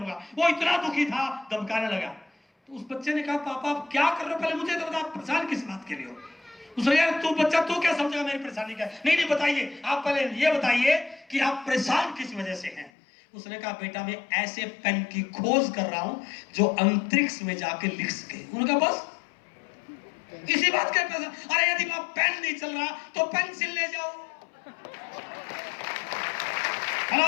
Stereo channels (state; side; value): drops out; right; at 12.9 s